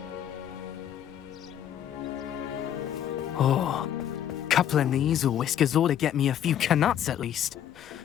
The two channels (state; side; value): quieter; right; 10.2 dB